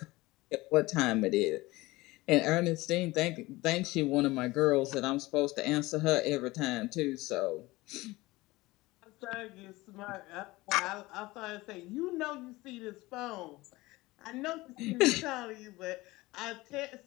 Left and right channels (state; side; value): quieter; right; 20.2 dB